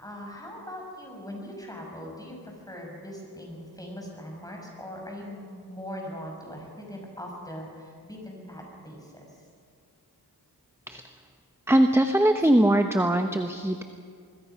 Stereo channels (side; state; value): both; normal; correlation 0.87